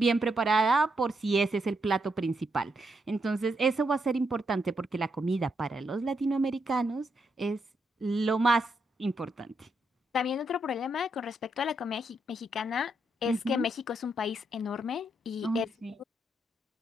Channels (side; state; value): both; normal; correlation 0.80